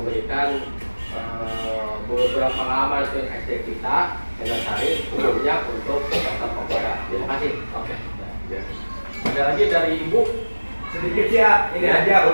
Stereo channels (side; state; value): both; inverted; correlation -1.00